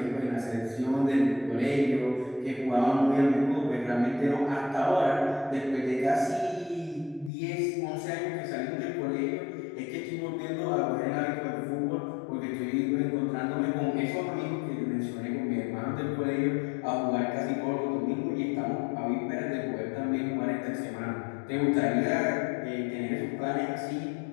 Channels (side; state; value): right; drops out; at 7.3 s